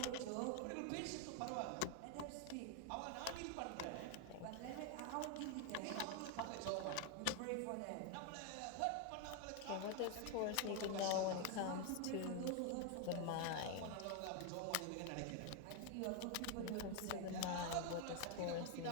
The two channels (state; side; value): different; both; correlation 0.01